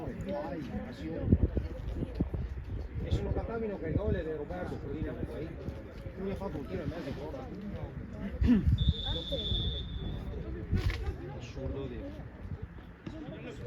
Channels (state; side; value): identical; both; correlation 1.00